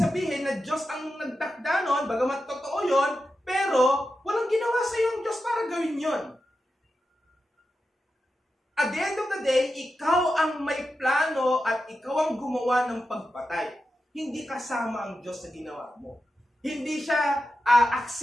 na Diyos ang nagtakda nun, bagamat totoo yon, pero walang ginawa sa yung Diyos para gawin yon. At the end of the day, ikaw ang may plano at ikaw ang gumawa ng pagpatay. Hindi kasama ang Diyos sa ginawa mo. Hindi siya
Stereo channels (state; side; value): normal; both; correlation 0.90